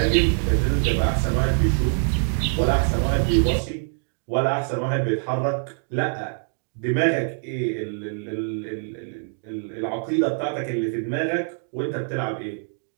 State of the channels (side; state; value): left; silent; 62 dB below the other